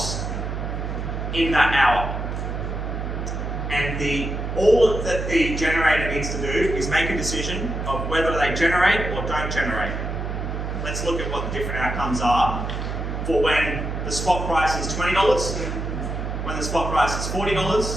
in that hour. And all that the generator needs to do is make a decision of whether they generate or don't generate. Let's look at what the different outcomes are for when the spot price is $20, when the spot price is $40,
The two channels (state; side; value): noise; right; hum, 4 dB below the sound